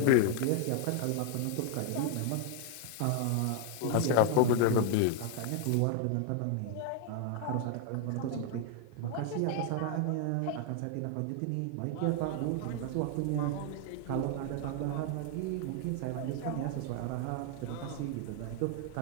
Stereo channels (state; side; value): different; both; correlation 0.00